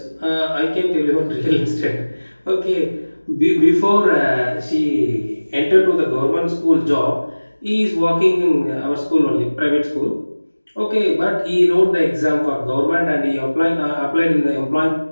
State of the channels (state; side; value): inverted; both; correlation -1.00